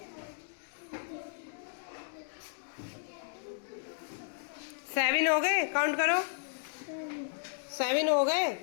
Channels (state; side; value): silent; right; digital silence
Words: 7 हो गए, काउंट करो, 7 हो गए।